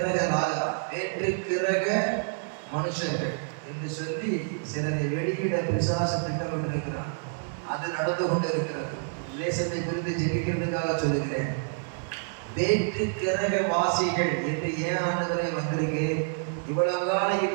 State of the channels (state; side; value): silent; left; digital silence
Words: கிரக மனுஷர்கள் என்று சொல்லி சிலரை வெளியிட பிசாசு திட்டமிட்டிருக்கிறார். அது நடந்து கொண்டு இருக்கிறது. தேசத்தை குறித்து ஜெபிக்கிறதுக்காக சொல்லுகிறேன். வேற்று கிரக வாசிகள் என்று ஏன் ஆண்டவரே வந்திருக்கு? இவ்வளவு காலம்